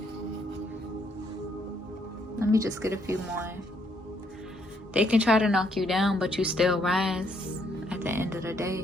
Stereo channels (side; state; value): both; normal; correlation 0.71